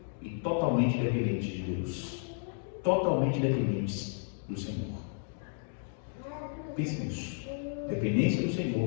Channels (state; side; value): silent; right; digital silence